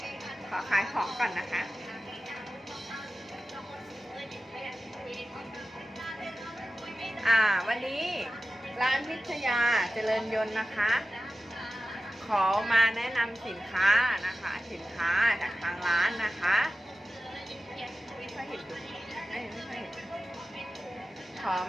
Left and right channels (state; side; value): normal; both; correlation 0.95